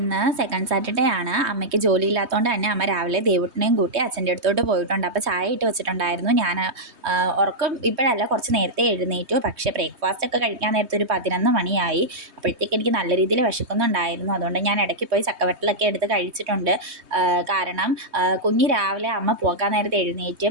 second Saturday ആണ്. അമ്മയ്ക്ക് ജോലിയില്ലാത്തതുകൊണ്ട് തന്നെ അമ്മ രാവിലെ ദേവുട്ടിനെയും കൂട്ടി അച്ഛൻ്റെ അടുത്തോട്ട് പോയിട്ടുണ്ട്. അപ്പോൾ ചായ ഇട്ട് വെച്ചിട്ടുണ്ടായിരുന്നു. ഞാൻ ഉറക്കം ഇപ്പോഴല്ല, കുറച്ച് നേരത്തെ എഴുന്നേറ്റു. പക്ഷേ ബ്രേക്ക്ഫാസ്റ്റ് ഒക്കെ കഴിക്കാൻ നേരത്തെ ഒരു 11 മണിയായി. അപ്പോഴത്തേക്ക് എനിക്ക് നല്ല രീതിയിൽ വിശക്കുന്നുണ്ടായിരുന്നു. അതുകൊണ്ട് ഞാൻ ഇടയ്ക്ക് പോയി ചക്കവറ്റലൊക്കെ എടുത്ത് കഴിച്ചിട്ടുണ്ട്. കാരണം കുഞ്ഞ് രാവിലെ അമ്മ പോകാൻ നേരത്തെ എഴുന്നേറ്റ്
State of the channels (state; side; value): late; left; 3.2 ms